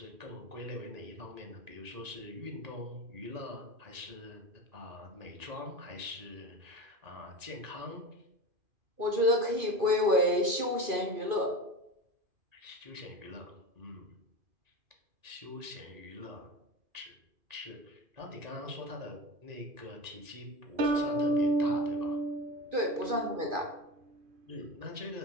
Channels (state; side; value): late; left; 2.5 ms